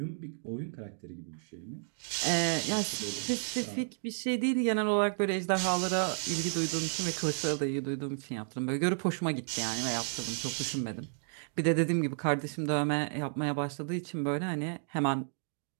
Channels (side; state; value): left; silent; digital silence